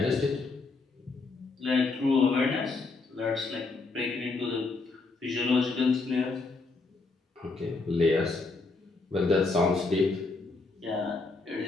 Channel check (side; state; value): right; quieter; 3.8 dB